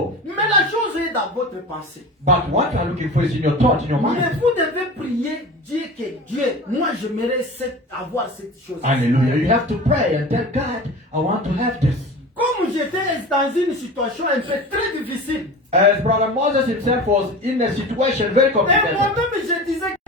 Mais la chose est dans votre pensée. But what you are looking for is in your thought, in your Mais mind. vous devez prier, dire que Dieu, moi j'aimerais avoir cette chose. Hallelujah. You have to pray and tell God, I want to have this. Comme j'étais dans une situation un peu très difficile, As Brother Moses himself was in a situation very et complicated. moi-même je disais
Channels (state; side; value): normal; both; correlation 0.34